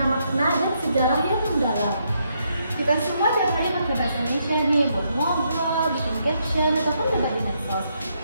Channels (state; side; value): inverted; both; correlation -0.77